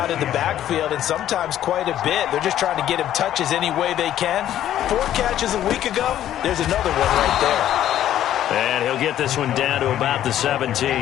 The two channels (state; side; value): quieter; right; 11.7 dB